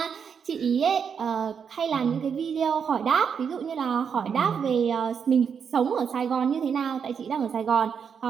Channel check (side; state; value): left; quieter; 6.9 dB